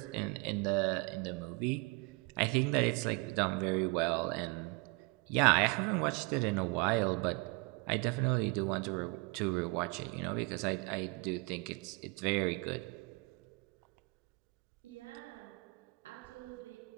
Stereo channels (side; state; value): left; quieter; 28.1 dB